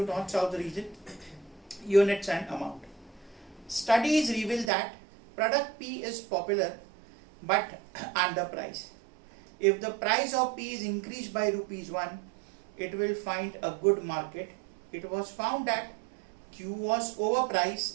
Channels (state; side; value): drops out; left; at 4.7 s